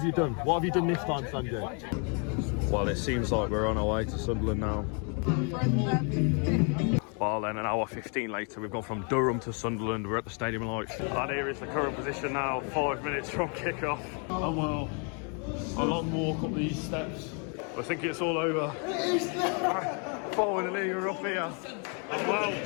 you done? What have you done this time, Sanjay? Well, it seems like we're on our way to Sunderland now. Well, then an hour 15 later, we've gone from Durham to Sunderland. We're at the Stadium of Light. And here is the current position now, 5 minutes from kick-off. And well, a long walk up these steps. I think it's all over. Finally, we're up here. And well,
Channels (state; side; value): quieter; right; 37.5 dB